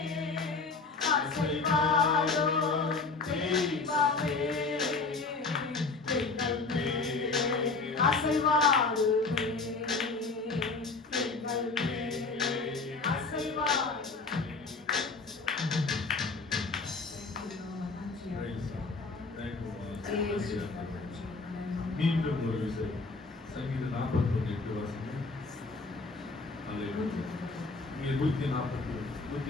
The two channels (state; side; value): quieter; right; 4.0 dB